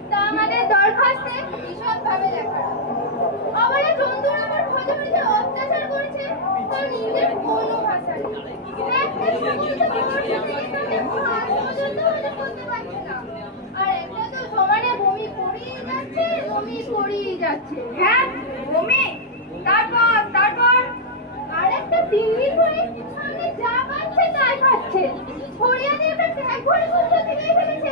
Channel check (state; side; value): normal; both; correlation -0.06